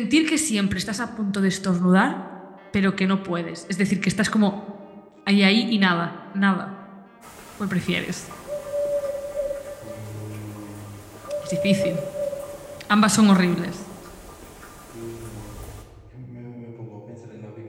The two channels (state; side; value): identical; both; correlation 1.00